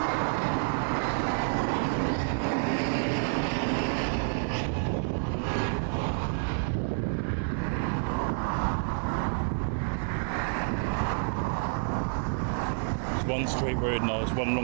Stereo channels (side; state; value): left; silent; 59 dB below the other